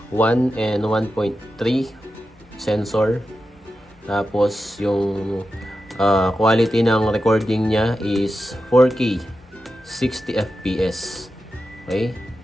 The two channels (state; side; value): normal; both; correlation 0.91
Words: 1 and 1.3 sensor. Tapos yung quality ng recording niya is 4K 60 FPS. Okay?